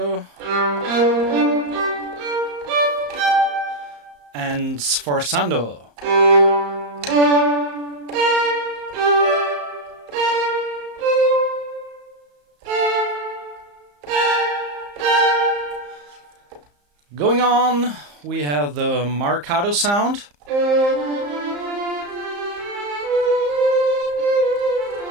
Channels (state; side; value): late; left; 34 ms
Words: and sforzando. Going on, we have the marcato sound.